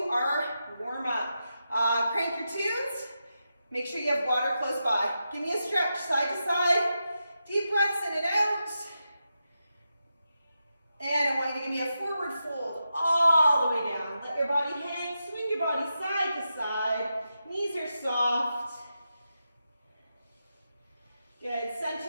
our warm-up. Crank your tunes. Make sure you have water close by. Give me a stretch side to side. Deep breaths in and out. And I want you to give me a forward fold all the way down. Let your body hang. Swing your body side to side. Knees are soft. Good.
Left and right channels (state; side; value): inverted; both; correlation -0.88